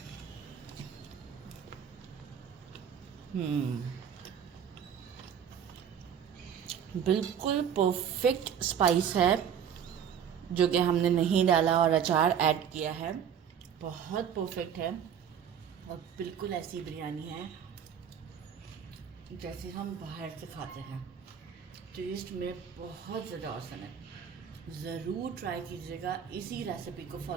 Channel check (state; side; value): quieter; left; 8.3 dB